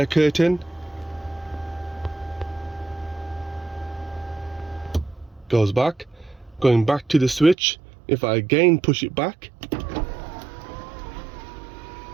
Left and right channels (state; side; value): drops out; left; at 7.6 s